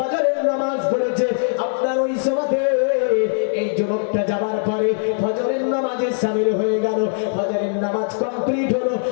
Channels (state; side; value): silent; right; digital silence